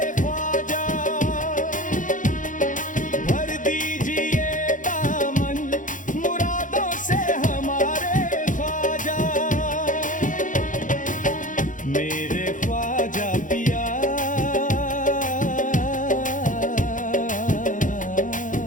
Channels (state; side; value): late; right; 0.38 ms